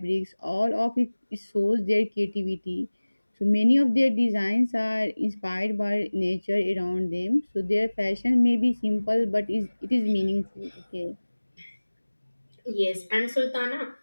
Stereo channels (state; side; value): inverted; both; correlation -1.00